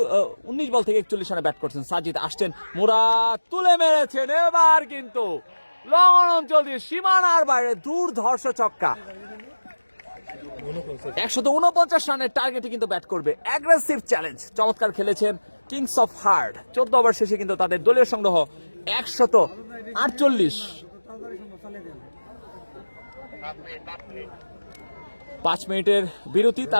বল থেকে 41 রানে ব্যাট করছেন সাজিদ। আসছেন মুরাদ, তুলে মেরেছেন এবার কিন্তু লং অঞ্চল দিয়ে সীমানার বাইরে দুর্ধর্ষ ছক্কা। 149 রানের টার্গেটে কিন্তু ব্যাট করবে। অ্যাগ্রেসিভ চ্যালেঞ্জ, চমৎকার খেলেছেন কিংস অফ হার্ট। 14 ওভার শেষে কিন্তু তাদের দলীয় সংগ্রহ 148। 5 মিনিটের বিরতি,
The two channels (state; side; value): inverted; both; correlation -1.00